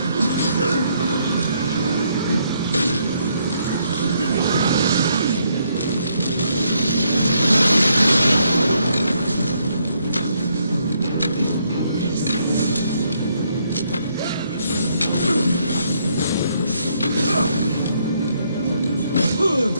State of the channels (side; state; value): both; inverted; correlation -0.73